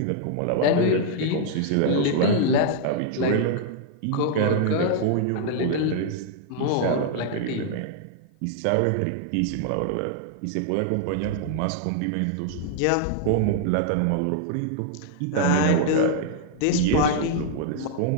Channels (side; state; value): both; different; correlation 0.00